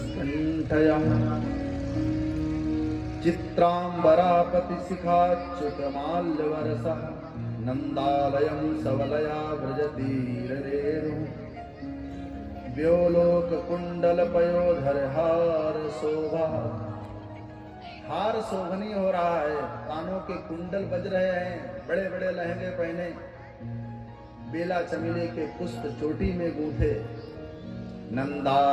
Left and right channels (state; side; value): identical; both; correlation 1.00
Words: चित्रांबरापति शिखाच्युतमाल्यवरसः नंदालयं सवलया व्रजतीरेणु व्योलोक कुंडल पयोधर हार शोभा। हार शोभनीय हो रहा है, कानों के कुंडल बज रहे हैं, बड़े बड़े लहंगे पहने, बेला चमेली के पुष्प चोटी में गूंथे।